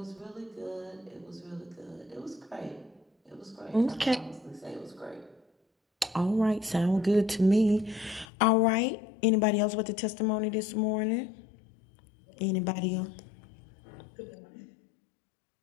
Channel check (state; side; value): drops out; right; at 8.2 s